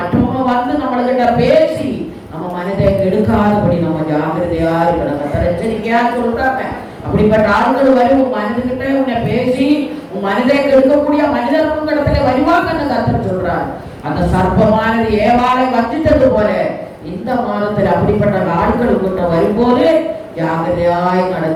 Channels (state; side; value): identical; both; correlation 1.00